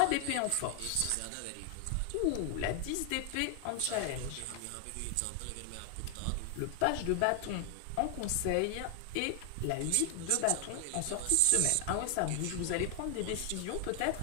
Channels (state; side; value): different; both; correlation 0.00